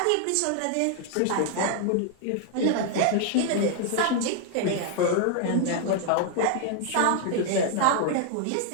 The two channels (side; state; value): both; different; correlation 0.00